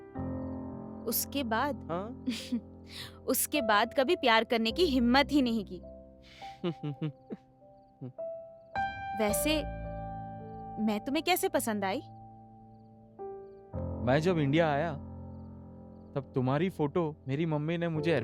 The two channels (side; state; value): both; identical; correlation 1.00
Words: उसके बाद हाँ? उसके बाद कभी प्यार करने की हिम्मत ही नहीं की। वैसे मैं तुम्हें कैसे पसंद आई? मैं जब इंडिया आया तब तुम्हारी फोटो मेरी मम्मी ने मुझे